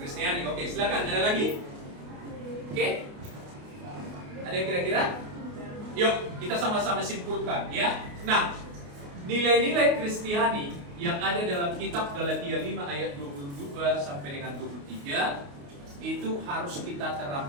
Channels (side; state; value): left; late; 28 ms